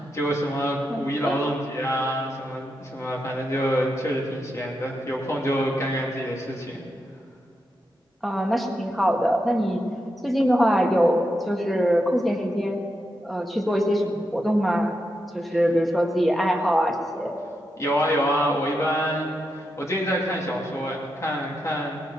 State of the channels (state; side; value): normal; both; correlation 0.85